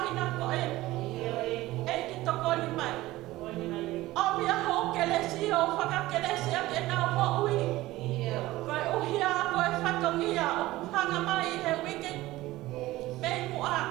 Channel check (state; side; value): quieter; left; 17.6 dB